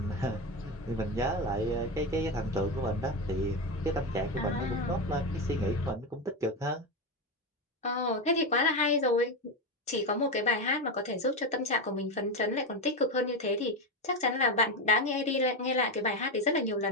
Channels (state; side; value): normal; both; correlation 0.14